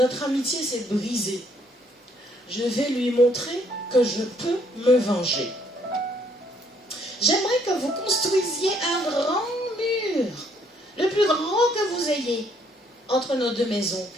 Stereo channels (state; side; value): normal; both; correlation 0.67